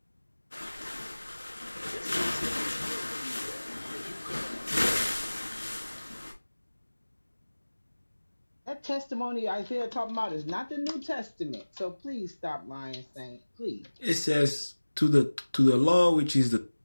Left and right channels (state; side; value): inverted; both; correlation -1.00